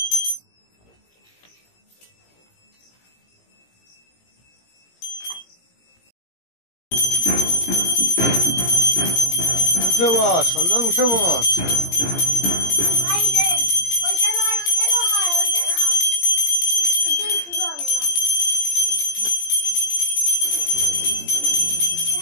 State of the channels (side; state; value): right; late; 17 ms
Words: উঠে বস, সন্ধান উঠে বস।